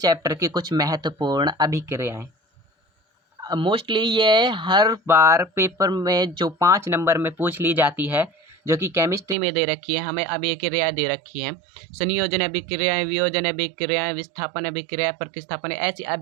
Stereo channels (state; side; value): drops out; left; at 9.3 s